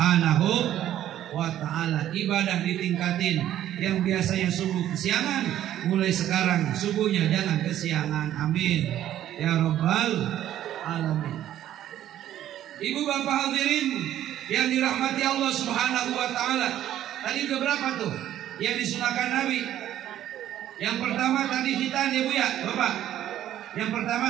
wa ta'ala. Ibadah ditingkatin. Yang biasanya subuh kesiangan, mulai sekarang subuhnya jangan kesiangan. Amin ya rabbal alamin. Ibu bapak hadirin yang dirahmati Allah Subhanahu wa ta'ala, tadi udah berapa tuh yang disunahkan Nabi? Yang pertama tadi hitan ya Bu ya, Bapak. Yang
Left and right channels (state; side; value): quieter; left; 12.0 dB